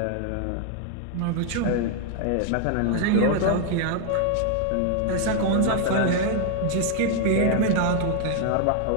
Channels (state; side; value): different; both; correlation 0.00